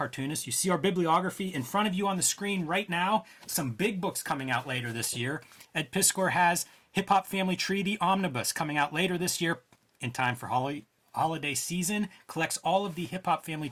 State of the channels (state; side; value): identical; both; correlation 1.00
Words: You see our bibliography in front of you on the screen right now. Some big books coming out later this year. Ed Piscor has Hip Hop Family Tree, the Omnibus, coming out later this year in time for holiday season. Collects all of the Hip Hop Family